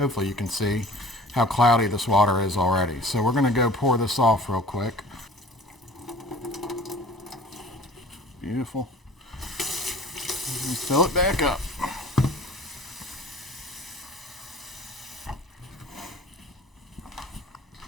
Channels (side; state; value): both; normal; correlation 0.45